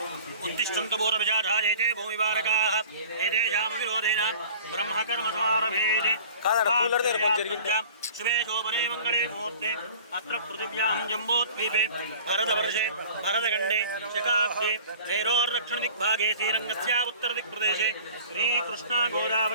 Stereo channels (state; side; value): inverted; both; correlation -0.44